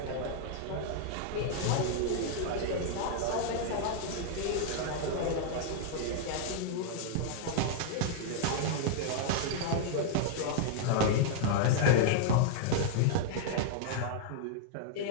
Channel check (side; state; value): both; different; correlation -0.01